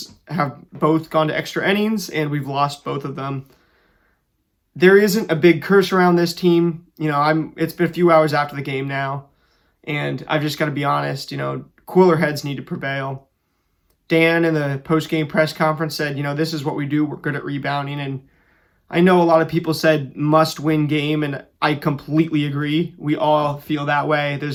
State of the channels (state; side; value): identical; both; correlation 1.00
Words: have both gone to extra innings, and we've lost both of them. There isn't a big curse around this team. It's been a few hours after the game now, and I've just got to be honest, cooler heads need to prevail. Dan in the post-game press conference said, this is what we do. We're good at rebounding. And I know a lot of people said must-win game, and I completely agree. We all feel that way.